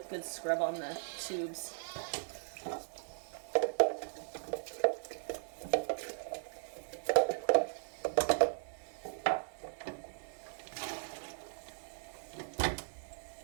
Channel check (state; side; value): silent; left; digital silence